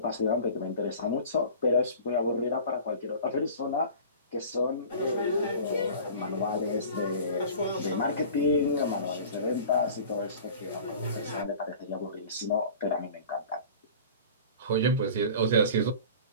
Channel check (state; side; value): inverted; both; correlation -0.41